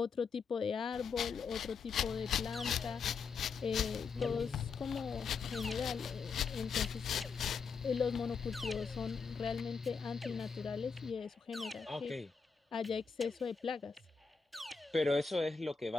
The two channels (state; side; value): quieter; right; 5.3 dB